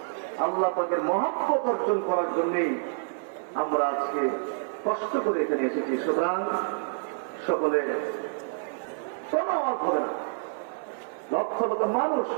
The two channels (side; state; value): left; silent; digital silence